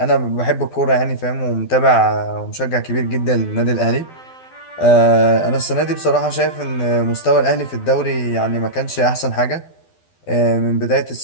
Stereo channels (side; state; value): right; late; 12 ms